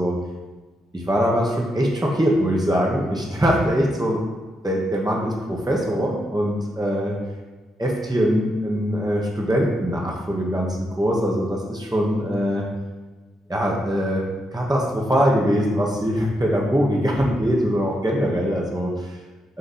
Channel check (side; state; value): both; normal; correlation 0.82